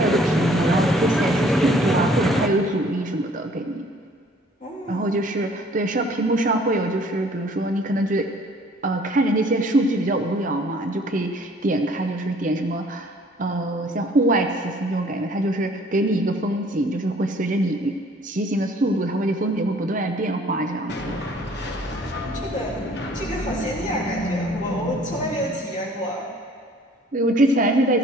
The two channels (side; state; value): both; normal; correlation 0.56